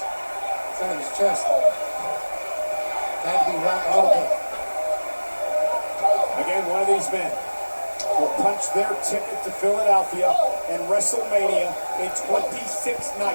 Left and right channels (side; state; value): both; inverted; correlation -1.00